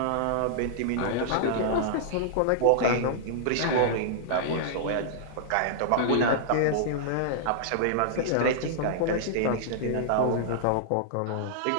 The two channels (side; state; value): both; different; correlation -0.01